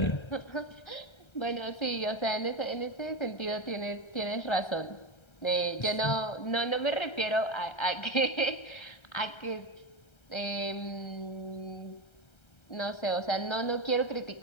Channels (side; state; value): right; late; 1.3 ms